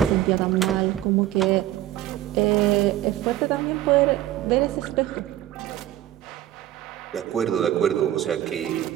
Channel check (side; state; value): left; quieter; 13.4 dB